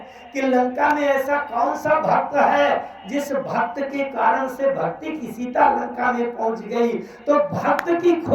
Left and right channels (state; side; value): identical; both; correlation 1.00